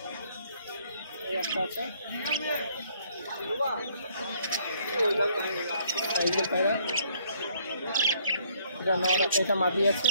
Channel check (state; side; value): inverted; both; correlation -0.64